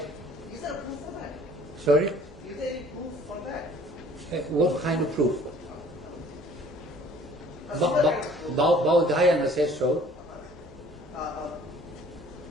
Is there a proof for that? Sorry. Is there any proof for that? What kind of proof? A similar kind of proof. Baudhayana says so.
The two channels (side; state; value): both; normal; correlation 0.53